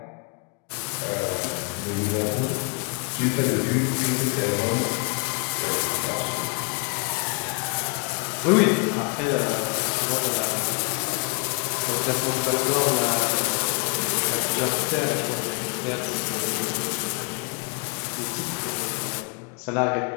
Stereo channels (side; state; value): right; quieter; 34.8 dB